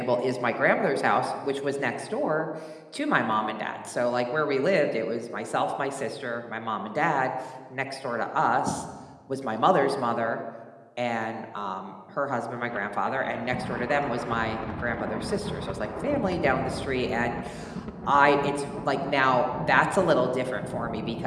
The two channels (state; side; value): identical; both; correlation 1.00